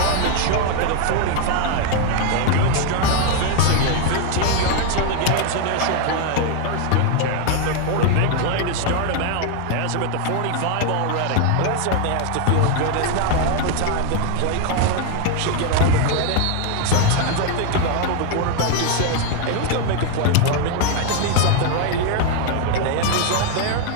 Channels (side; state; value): both; different; correlation 0.01